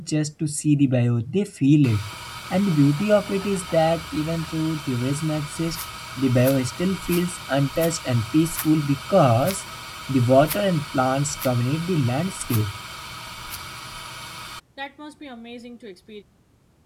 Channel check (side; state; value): both; identical; correlation 1.00